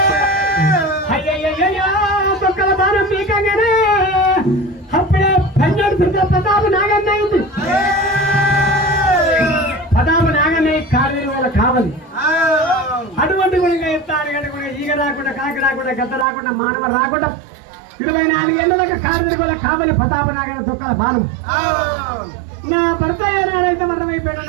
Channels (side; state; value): left; drops out; at 16.2 s